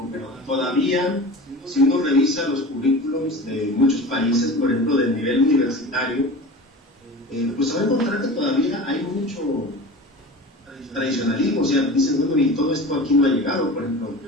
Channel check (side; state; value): both; normal; correlation 0.35